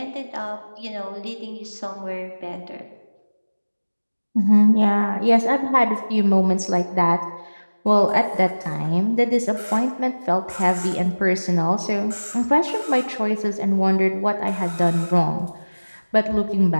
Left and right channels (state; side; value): inverted; both; correlation -1.00